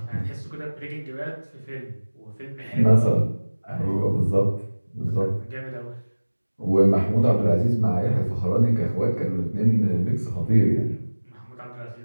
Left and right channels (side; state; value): both; inverted; correlation -1.00